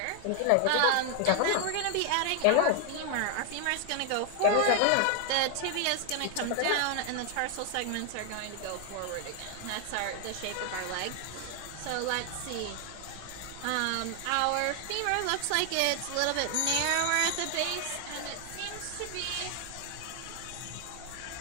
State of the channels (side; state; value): both; different; correlation 0.00